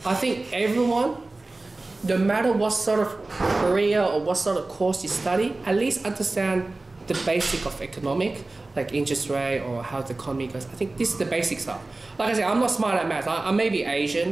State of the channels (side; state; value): left; quieter; 3.1 dB